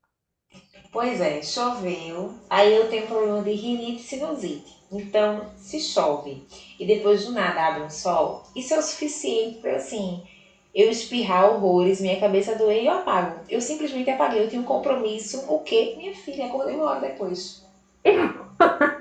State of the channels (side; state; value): both; identical; correlation 1.00